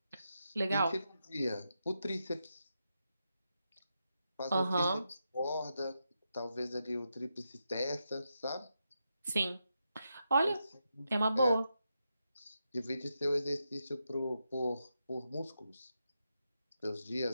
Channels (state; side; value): inverted; both; correlation -0.86